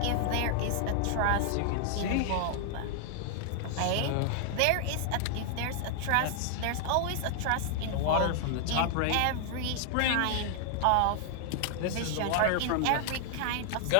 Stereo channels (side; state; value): both; different; correlation 0.00